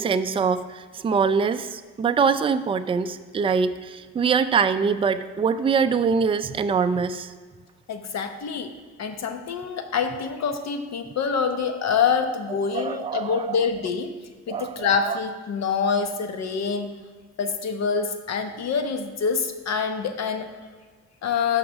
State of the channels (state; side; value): normal; both; correlation 0.12